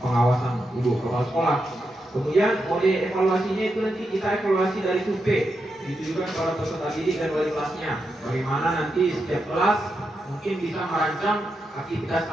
pengawasan ibu kepala sekolah. Kemudian mode evaluasinya itu nanti kita evaluasi dari survei. Itu juga para peserta didik dan wali kelasnya. Bagaimana nanti setiap kelas mungkin bisa merancang aktivitas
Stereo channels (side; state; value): both; normal; correlation 0.86